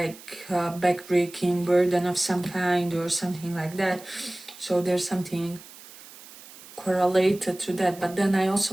a backbreaking burden of some kind or something like that. So there's something correlated to that. But then I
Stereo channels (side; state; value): right; noise; hiss, 19 dB below the sound